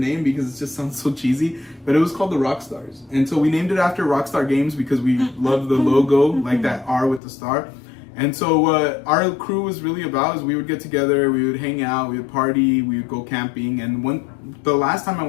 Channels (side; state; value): right; drops out; at 7.2 s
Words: because it just sounds so cheesy, but it was called the Rockstars. And so we named it after Rockstar Games because we love the logo, like that R with the star. And so what our crew was really about is we would get together, we would hang out, we would party, we would go camping. And the last time I